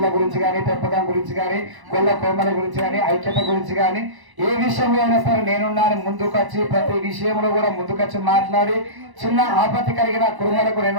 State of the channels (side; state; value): left; late; 1.0 ms